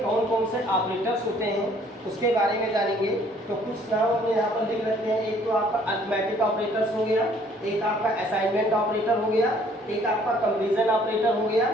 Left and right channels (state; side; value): normal; both; correlation 0.59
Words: कौन कौन से ऑपरेटर्स होते हैं उसके बारे में जानेंगे। तो कुछ नाम हमने यहाँ पर लिख रखे हैं। एक तो आपका अरिथमेटिक ऑपरेटर्स हो गया, एक आपका असाइनमेंट ऑपरेटर हो गया, एक आपका कंपैरिजन ऑपरेटर हो गया,